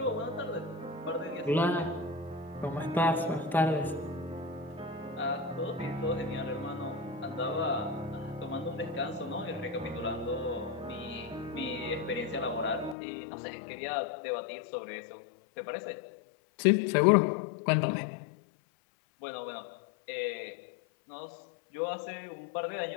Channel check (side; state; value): right; drops out; at 13.0 s